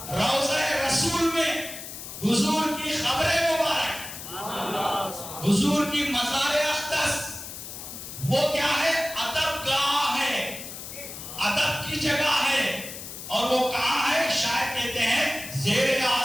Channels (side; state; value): left; noise; hiss, 10 dB below the sound